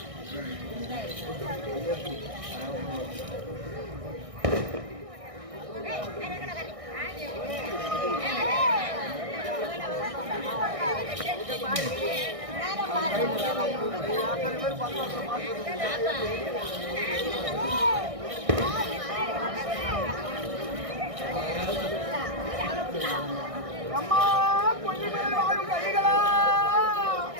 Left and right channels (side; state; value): left; late; 1.6 ms